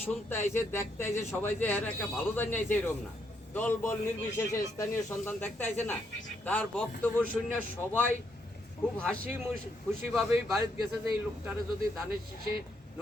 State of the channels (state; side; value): normal; both; correlation 0.76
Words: শুনতে আইছে দেখতে আইছে সবাই যে এর একটা ভালো জানি আইছে এরকম না, দল বল নির্বিশেষে স্থানীয় সন্তান দেখতে আইছে না, তার বক্তব্য শুনে সবাই খুব হাসি খুশিভাবেই বাড়িতে গেছে যে এই লোকটারে যদি ধানের শীষে